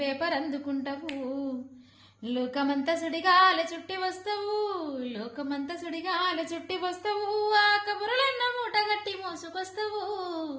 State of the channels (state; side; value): identical; both; correlation 1.00